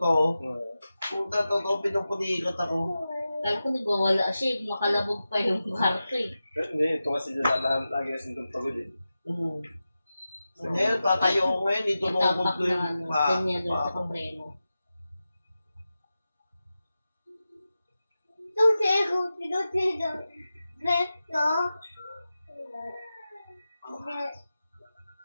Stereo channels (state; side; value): inverted; both; correlation -0.93